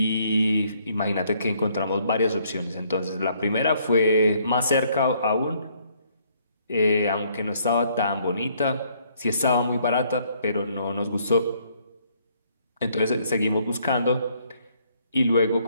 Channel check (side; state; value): both; inverted; correlation -0.67